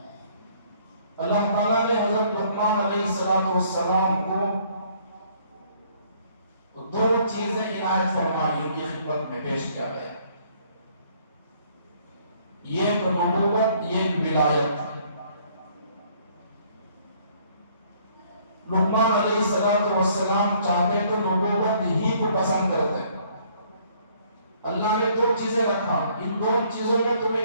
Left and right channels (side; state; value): both; inverted; correlation -0.62